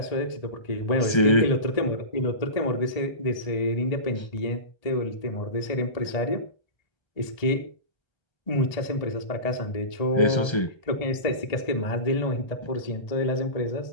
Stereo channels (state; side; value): late; right; 1.3 ms